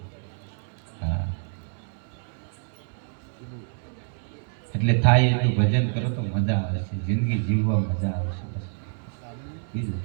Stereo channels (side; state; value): left; silent; 60 dB below the other